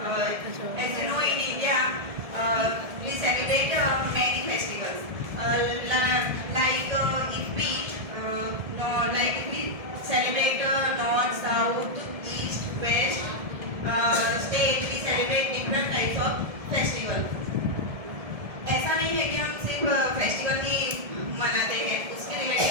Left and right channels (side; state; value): left; late; 1.7 ms